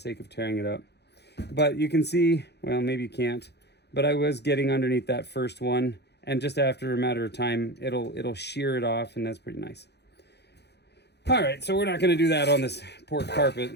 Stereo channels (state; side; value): late; right; 0.49 ms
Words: of tearing it up. But you can see, well, maybe you can't, but I was getting underneath that first one, and just after a matter of time, it'll shear it off, and that's pretty nice. All right, so we're not going to do that on this pork carpet.